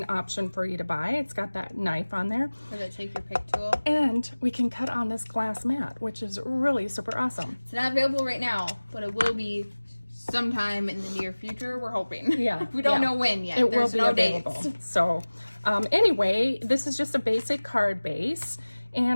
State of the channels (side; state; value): both; inverted; correlation -1.00